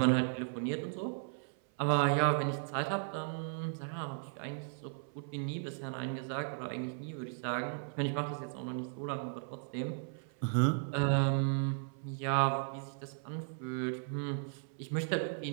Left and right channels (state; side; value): silent; left; 54 dB below the other